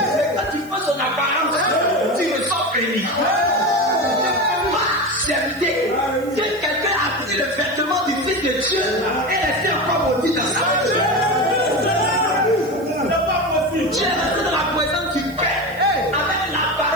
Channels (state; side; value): noise; right; hiss, 23 dB below the sound